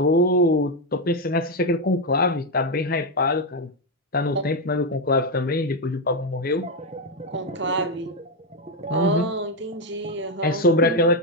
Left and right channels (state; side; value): normal; both; correlation 0.06